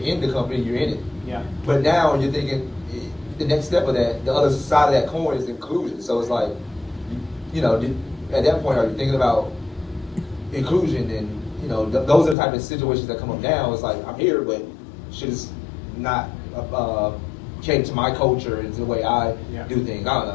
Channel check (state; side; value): drops out; right; at 12.4 s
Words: in the company, you're in it. Yeah. But now you're thinking the next step of that, the other side of that coin is inclusion. So it's like, you know, at that point, are you thinking about inclusion? And, you know, those are the type of situations that come up now. It's like, I'm here, but shit is not cater to my culture and to the way I do things. I